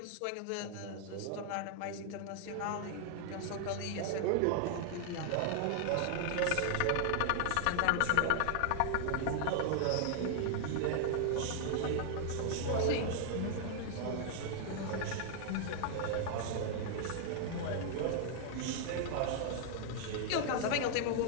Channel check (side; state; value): both; different; correlation 0.00